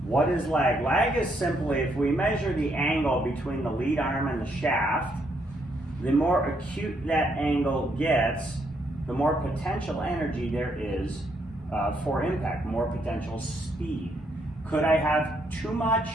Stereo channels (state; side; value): normal; both; correlation 0.74